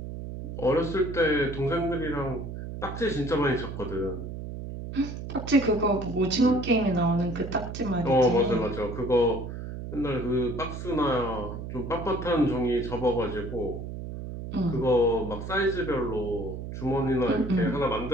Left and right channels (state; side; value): noise; right; hum, 8 dB below the sound